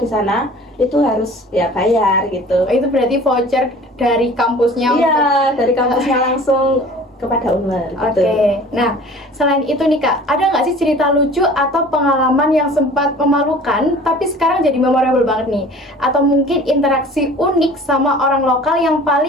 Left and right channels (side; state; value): both; normal; correlation 0.45